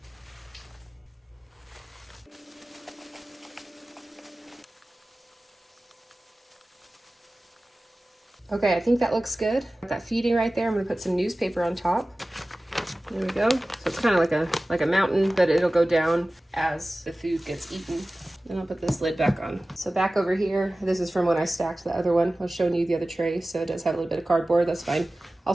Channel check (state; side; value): normal; both; correlation 0.97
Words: Okay, I think that looks good. Got that feeding right there. I'm gonna put some newspaper on top. There we go. So it's kind of like a mountain, but it'll go down as the food gets eaten. Then I'll put this lid back on. So back over here, this is from when I stacked the other one. I was showing you the other tray, so it does have a little bit of cardboard. That's fine.